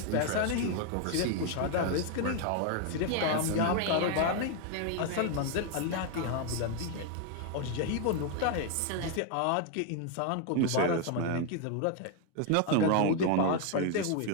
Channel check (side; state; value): both; different; correlation 0.01